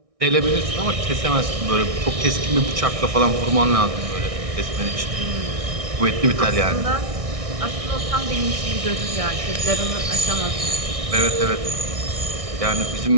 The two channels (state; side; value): late; left; 1.6 ms